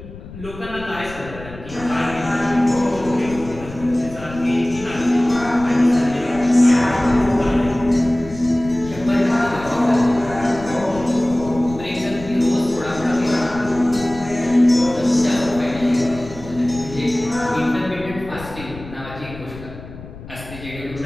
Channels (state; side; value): noise; left; rumble, 15 dB below the sound